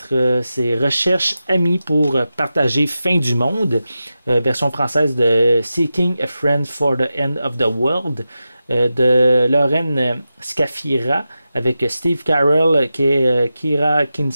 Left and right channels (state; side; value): inverted; both; correlation -0.91